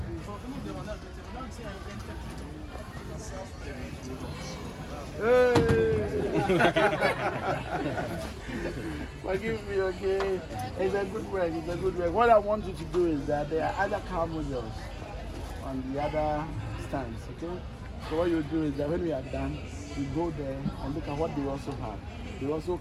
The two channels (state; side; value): identical; both; correlation 1.00